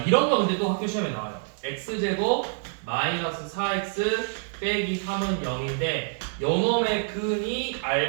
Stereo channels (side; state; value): left; silent; digital silence